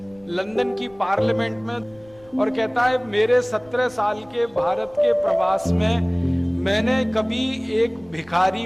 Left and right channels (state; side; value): noise; left; rumble, 28 dB below the sound